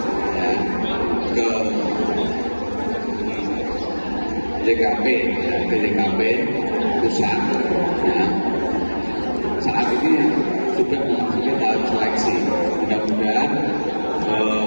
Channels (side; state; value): both; inverted; correlation -1.00